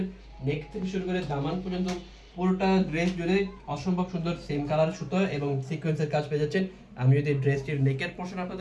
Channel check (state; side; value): identical; both; correlation 1.00